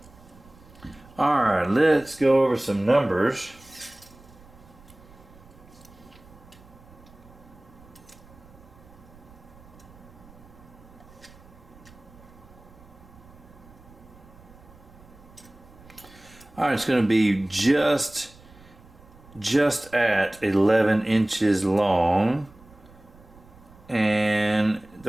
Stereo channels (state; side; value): noise; right; rumble, 23 dB below the sound